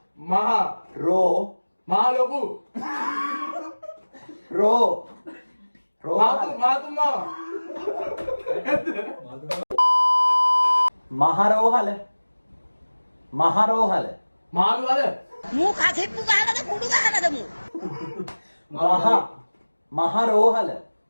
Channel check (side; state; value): both; inverted; correlation -1.00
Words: මහා රෝ මහා ලොකු රෝ මාතු මාව මහරෝහල මහරෝහල මාළු අද මූ කසෙප්පු ගහනද කුඩු ගහනද මූ මහරෝහල